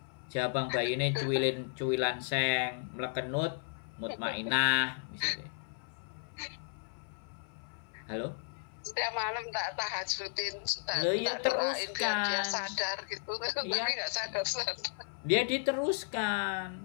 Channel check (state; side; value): silent; right; 55 dB below the other